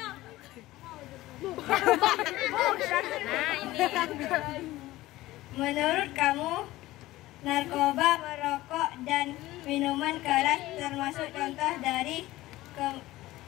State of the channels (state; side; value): quieter; right; 17.2 dB